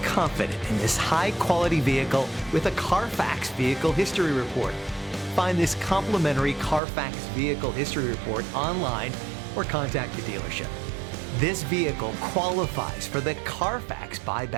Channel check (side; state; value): left; drops out; at 6.8 s